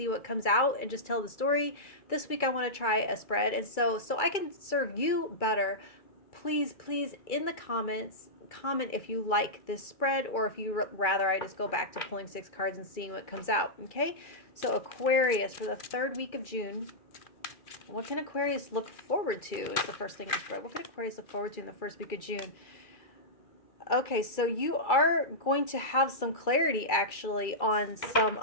what comes out and just tell the story. This week I want to try a spread, and so I can serve you better. Please in the comments comment if you like this spread, or if you rather I just go back to pulling 6 cards and seeing what comes out. Okay, so Aquarius, for the third week of June, what can Aquarius look forward to is the first thing in the spread. What can Aquarius look forward to in the first week of June? Okay, so you are going to have some clarity actually on some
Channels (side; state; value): right; late; 2.3 ms